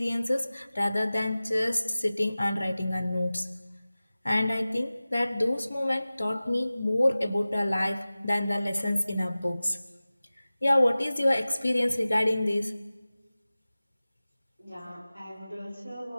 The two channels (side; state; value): both; inverted; correlation -0.97